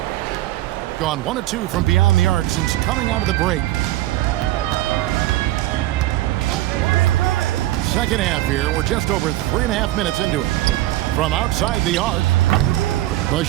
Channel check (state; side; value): quieter; left; 15.7 dB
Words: Gone 1 of 2 from beyond the arc since coming out of the break. Second half here. We're just over 3.5 minutes into it. From outside the arc, the